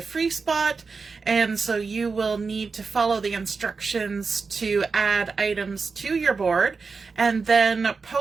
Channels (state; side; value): quieter; left; 4.7 dB